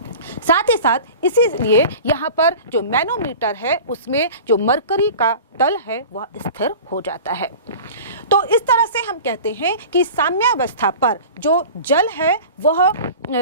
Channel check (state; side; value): inverted; both; correlation -0.38